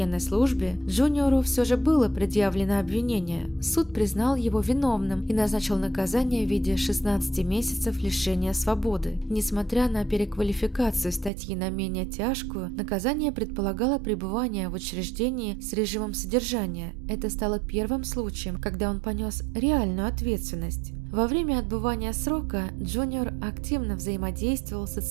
службе, Джуниору все же было предъявлено обвинение. Суд признал его виновным и назначил наказание в виде 16 месяцев лишения свободы. Несмотря на переквалификацию статьи на менее тяжкую, наказание предполагало пребывание в учреждении с режимом содержания. Это стало первым случаем, когда он понес реальную ответственность. Во время отбывания срока Джуниор активно взаимодействовал с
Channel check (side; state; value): left; drops out; at 11.3 s